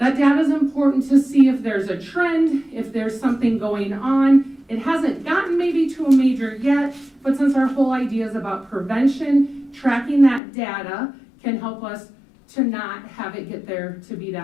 data is important to see if there's a trend, if there's something going on. It hasn't gotten maybe to a major yet, but since our whole idea is about prevention, tracking that data can help us to not have it get there to be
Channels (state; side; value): drops out; right; at 10.4 s